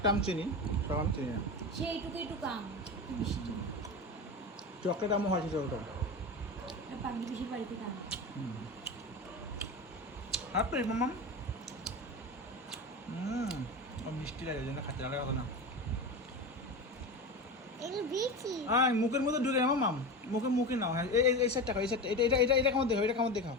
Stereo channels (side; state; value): both; normal; correlation 0.24